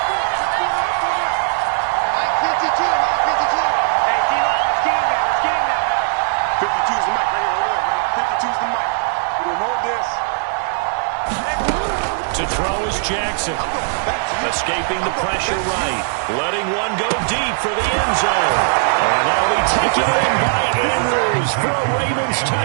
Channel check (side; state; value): left; silent; digital silence